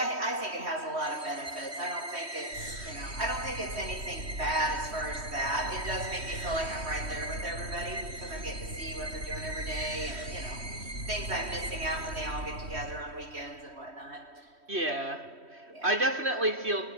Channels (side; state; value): left; late; 3.1 ms